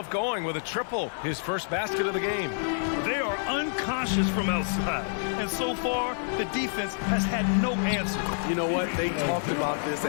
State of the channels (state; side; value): silent; right; digital silence